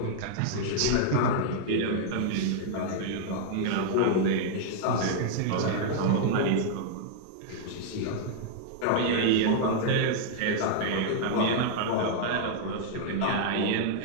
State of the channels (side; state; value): both; different; correlation -0.01